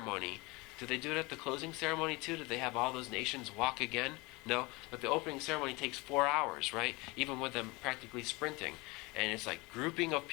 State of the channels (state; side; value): quieter; right; 24.8 dB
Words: Do they do it at the closing ceremony too? Do they have all those nations walk again? No, but the opening ceremony takes 4 hours, right? Even with them practically sprinting. And it's like grouping of